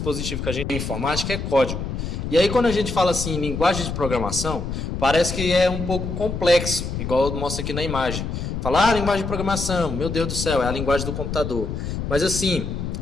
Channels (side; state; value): left; noise; rumble, 4 dB below the sound